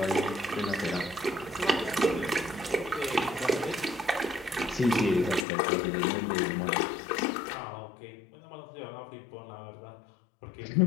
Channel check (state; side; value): drops out; right; at 5.5 s